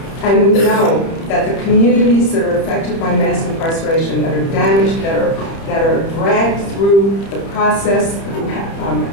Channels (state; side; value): late; right; 30 ms